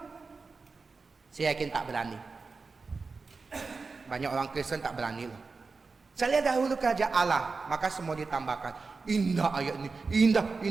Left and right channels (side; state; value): left; quieter; 4.3 dB